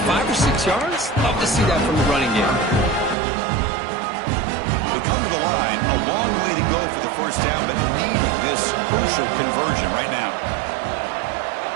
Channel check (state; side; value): drops out; left; at 3.2 s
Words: 5 or 6 yards. Love to see that from the running game. They come to the line, a long way to go for the first down, but needing this crucial conversion right now.